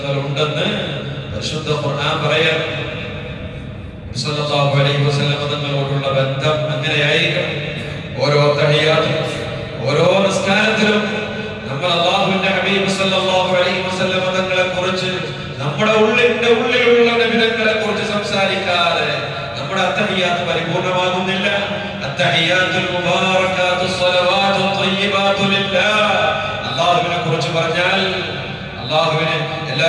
ഉണ്ടെന്ന് പരിശുദ്ധ ഖുർആൻ പറയാൻ. സല്ലല്ലാഹു അലൈഹി വസല്ലം തങ്ങളോടുള്ള ബന്ധം അങ്ങനെയായിരിക്കണം. ഓരോ തഹിയ്യാത്തിലും ഓരോ നിസ്കാരത്തിലും നമ്മൾ അല്ലാഹുവിന്റെ ഹബീബ് സല്ലല്ലാഹു അലൈഹി വസല്ലം തങ്ങളെ കുറിച്ച് നമ്മുടെ ഉള്ളിലുള്ള നബിതങ്ങളെ കുറിച്ച് സംസാരിക്കാതെ നമ്മുടെ അത്തഹിയ്യാത്ത് പരിപൂർണമാകുന്നില്ല. അത്തഹിയ്യാത്തുൽ മുബാറകാത്തുസ് സ്വലവാത്തുത് ത്വയ്യിബാതു ലില്ലാഹ്. അല്ലാഹുവിനെ കുറിച്ച് പറഞ്ഞാൽ അല്ലാഹുവിനെ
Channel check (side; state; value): both; identical; correlation 1.00